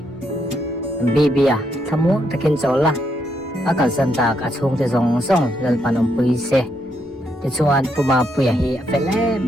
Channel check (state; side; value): normal; both; correlation 0.77